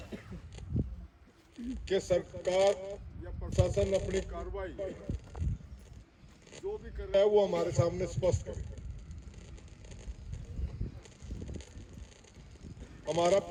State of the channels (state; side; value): identical; both; correlation 1.00